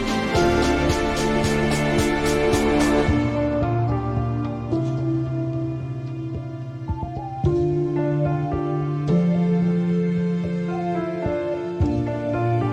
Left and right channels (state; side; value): identical; both; correlation 1.00